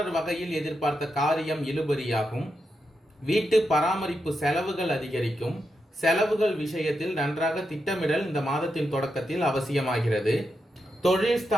வகையில் எதிர்பார்த்த காரியம் இழுபறியாகும். வீட்டு பராமரிப்பு செலவுகள் அதிகரிக்கும். செலவுகள் விஷயத்தில் நன்றாக திட்டமிடல் இந்த மாதத்தின் தொடக்கத்தில் அவசியமாகிறது. தொழில்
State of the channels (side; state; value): both; normal; correlation 0.85